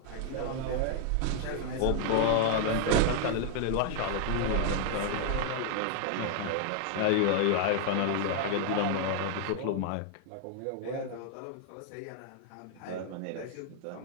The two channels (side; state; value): both; different; correlation 0.00